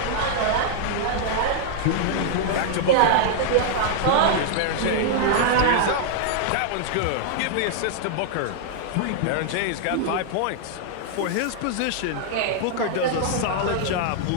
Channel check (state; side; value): different; both; correlation -0.01